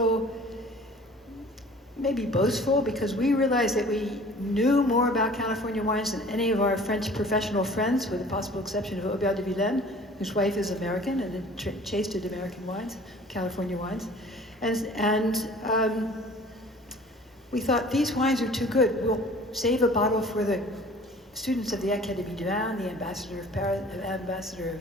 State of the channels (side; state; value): both; normal; correlation 0.48